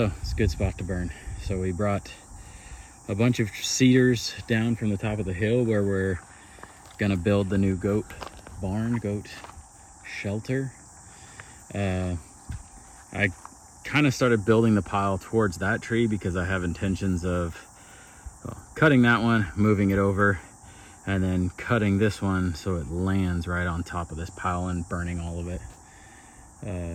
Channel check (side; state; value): both; identical; correlation 1.00